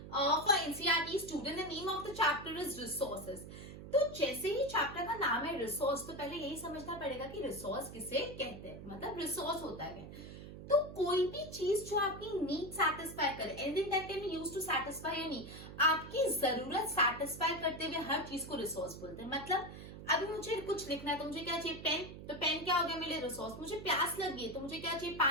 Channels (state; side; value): noise; right; hum, 12 dB below the sound